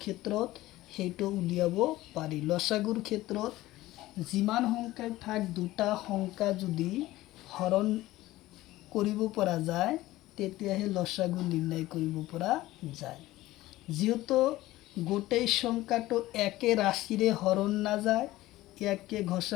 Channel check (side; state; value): right; quieter; 16.9 dB